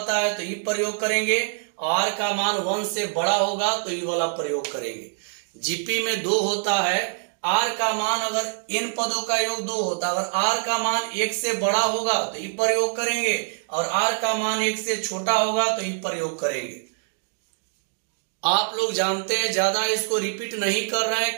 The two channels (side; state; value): left; silent; 62 dB below the other